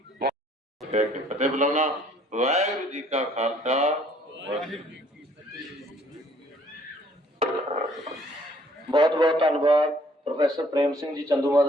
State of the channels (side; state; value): both; normal; correlation 0.60